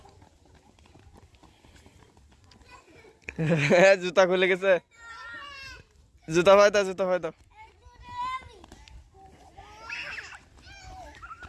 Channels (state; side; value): identical; both; correlation 1.00